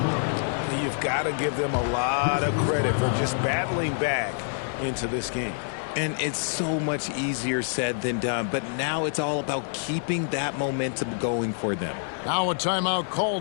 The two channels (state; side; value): silent; right; digital silence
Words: You've got to give them a lot of credit for just battling back into this game. And it's so much easier said than done, but now it's all about keeping that momentum going for them. Now a timeout